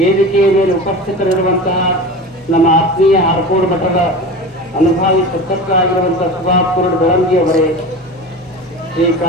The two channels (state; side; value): normal; both; correlation 0.31